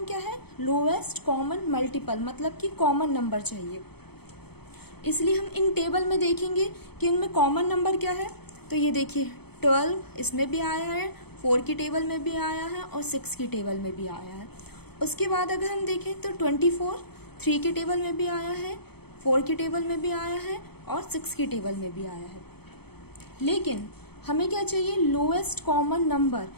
क्या है, लोएस्ट कॉमन मल्टीपल, मतलब कि कॉमन नंबर चाहिए। इसलिए हम इन टेबल में देखेंगे कि इनमें कॉमन नंबर क्या है। तो ये देखिए 12 इसमें भी आया है, 4 की टेबल में भी आया है और 6 की टेबल में भी आया है। उसके बाद अगर हम देखें तो 24 3 की टेबल में भी आया है, 4 की टेबल में भी आया है और 6 की टेबल में भी आया है। लेकिन हमें क्या चाहिए, लोएस्ट कॉमन नंबर,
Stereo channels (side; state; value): right; late; 0.97 ms